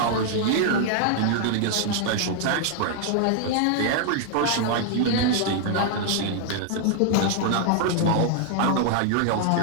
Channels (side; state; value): both; different; correlation 0.00